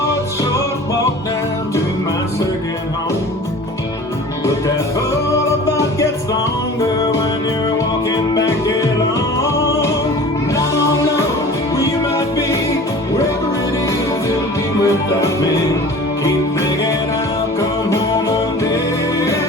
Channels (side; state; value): both; normal; correlation 0.42